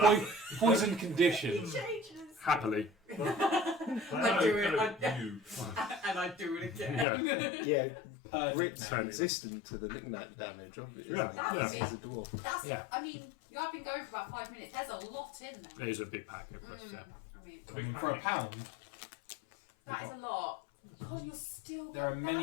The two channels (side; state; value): right; drops out; at 7.1 s